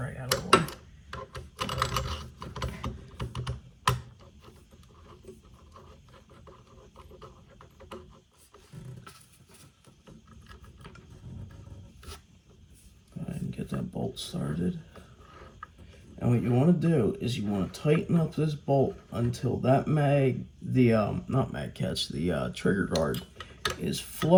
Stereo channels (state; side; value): identical; both; correlation 1.00